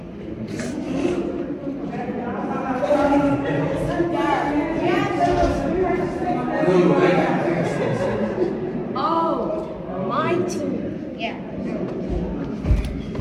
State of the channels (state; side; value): identical; both; correlation 1.00